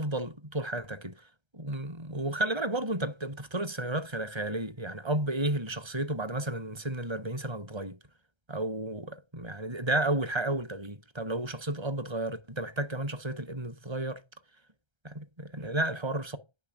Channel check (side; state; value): left; late; 1.3 ms